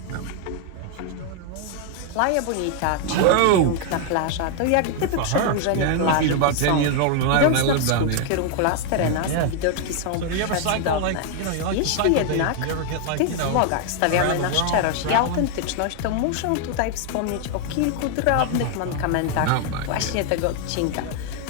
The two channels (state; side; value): different; both; correlation 0.00